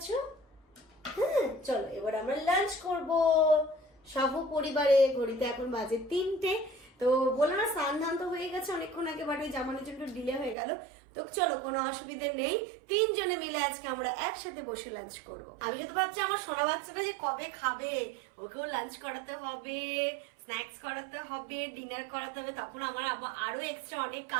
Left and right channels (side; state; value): left; drops out; at 10.6 s